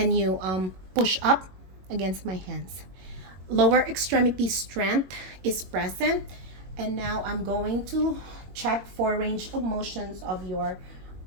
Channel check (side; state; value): left; late; 22 ms